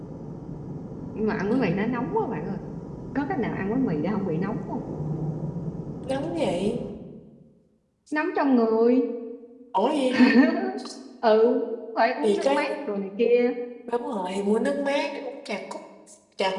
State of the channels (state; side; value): identical; both; correlation 1.00